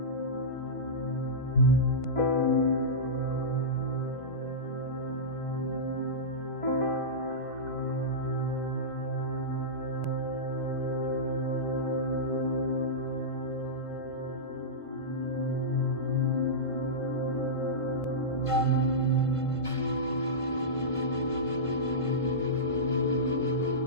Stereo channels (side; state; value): right; late; 1.5 ms